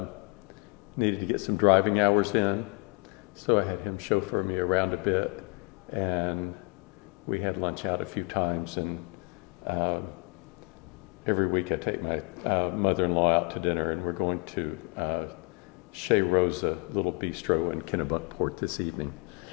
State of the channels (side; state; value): right; quieter; 32.0 dB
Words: get some driving hours in, so I had him chauffeur me around a bit, and we had lunch out a few times. And every week I take my mother-in-law out to dinner, and we're going to Chez Rosa little bistro in Kennebunk Port this evening.